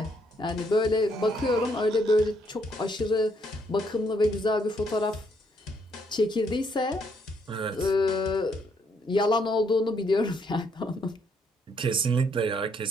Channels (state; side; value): normal; both; correlation 0.71